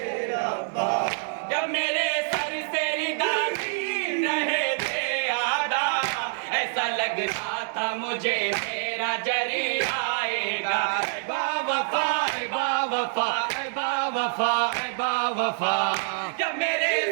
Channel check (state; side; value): silent; left; digital silence